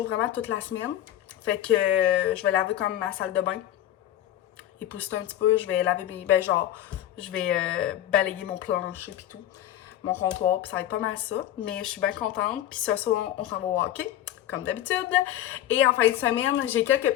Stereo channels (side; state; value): right; quieter; 12.5 dB